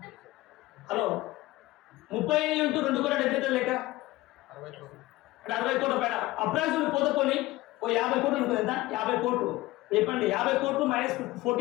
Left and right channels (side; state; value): right; quieter; 18.6 dB